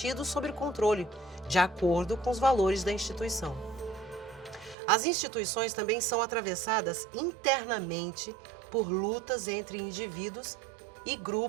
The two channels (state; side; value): drops out; left; at 4.8 s